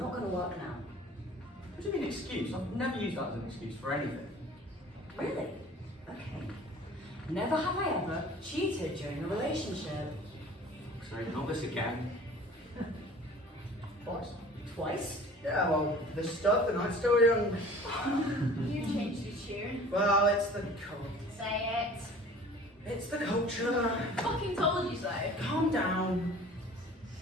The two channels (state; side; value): normal; both; correlation 0.46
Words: going to work now. What do you mean excuse? I've never used that as an excuse for anything. Really? Okay. Never have I ever cheated during a relationship. Sorry, not this again. Twice. Twice? Yeah, well, the stud, the night's still young. You changed your tune. Well, it's the code. Say it. It's the culture. Fucking told you so. Calm down.